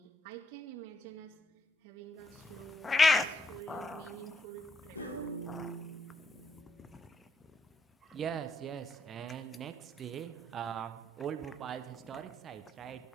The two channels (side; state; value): both; normal; correlation 0.74